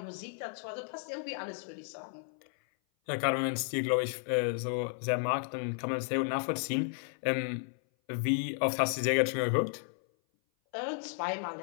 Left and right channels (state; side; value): silent; right; 56 dB below the other